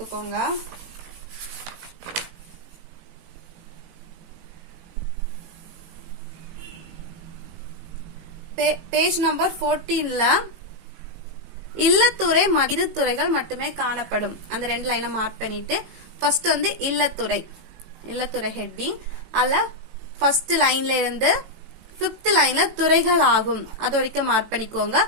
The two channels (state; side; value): late; left; 18 ms